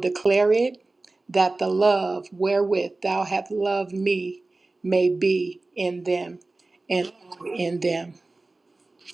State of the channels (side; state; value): left; quieter; 3.2 dB